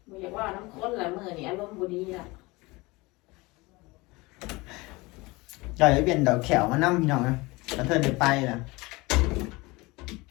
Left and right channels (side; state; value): right; quieter; 23.3 dB